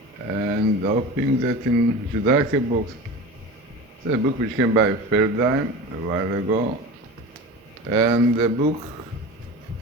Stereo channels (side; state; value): both; normal; correlation 0.32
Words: and hoping that in Judaica books, it's a book which came by Feldheim a while ago, and a book